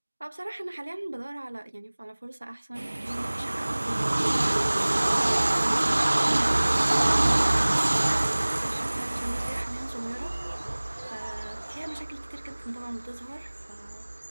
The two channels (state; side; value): inverted; both; correlation -1.00